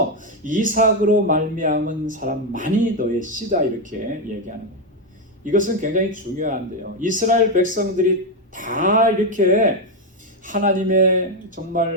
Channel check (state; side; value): normal; both; correlation 0.06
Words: 이삭으로 말미암은 사람만이 너의 씨다 이렇게 얘기하는 거예요. 이것은 굉장히 중요한데요. 이스라엘 백성들이 다 이렇게 하나님의